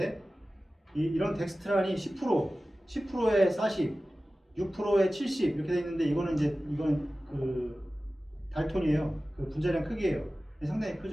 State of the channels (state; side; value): normal; both; correlation 0.96